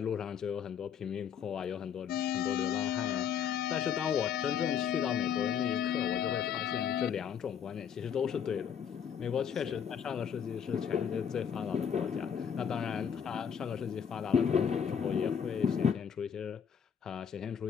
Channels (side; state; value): right; quieter; 7.8 dB